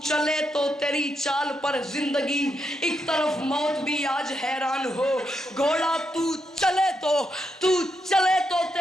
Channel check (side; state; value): both; normal; correlation 0.82